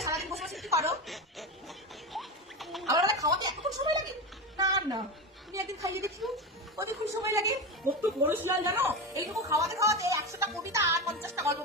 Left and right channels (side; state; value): both; normal; correlation 0.19